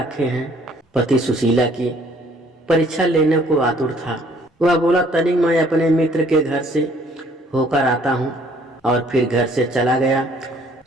हैं। पति सुशीला की परीक्षा लेने को आतुर था। वह बोला, तनिक मैं अपने मित्र के घर से होकर आता हूँ, और फिर घर से चला गया।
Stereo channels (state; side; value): normal; both; correlation 0.60